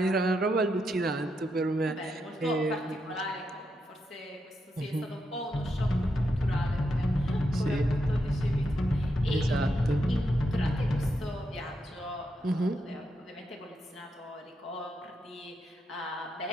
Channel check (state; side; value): normal; both; correlation 0.83